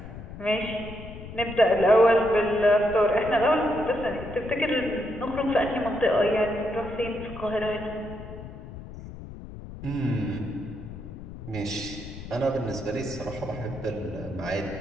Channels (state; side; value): noise; left; rumble, 12 dB below the sound